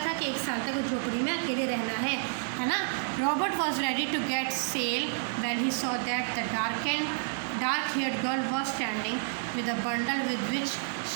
था कि एक साल तक वो झोपड़ी में अकेले रहना है ना। Robert was ready to get sail when he saw that the dark haired girl was standing with a bundle with which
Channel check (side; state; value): left; silent; digital silence